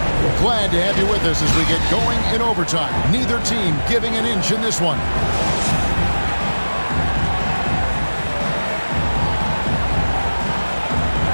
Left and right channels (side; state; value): both; inverted; correlation -1.00